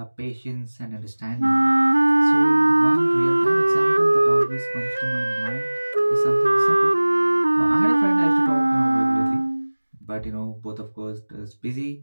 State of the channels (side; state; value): both; inverted; correlation -1.00